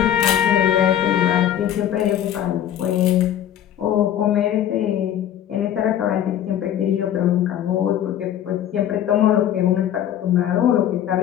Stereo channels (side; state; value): right; quieter; 10.8 dB